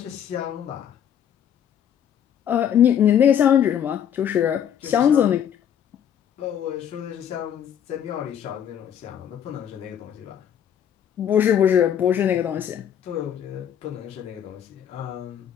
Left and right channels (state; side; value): quieter; right; 9.2 dB